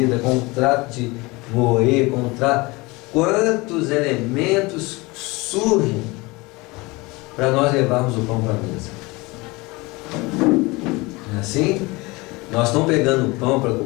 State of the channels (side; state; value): right; quieter; 23.8 dB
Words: com o trato de moer, com o trato... Quantos elementos surgem para nós levarmos o pão para a mesa? Não é assim? Nós estamos pegando o pão para